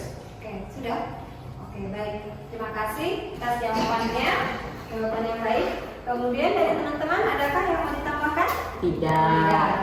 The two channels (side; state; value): both; identical; correlation 1.00